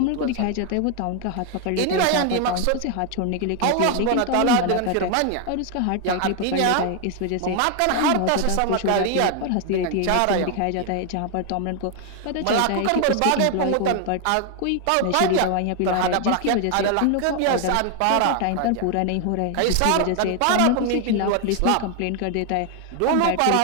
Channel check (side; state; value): both; different; correlation 0.00